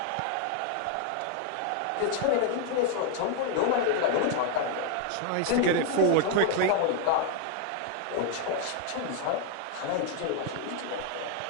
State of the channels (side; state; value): both; different; correlation 0.00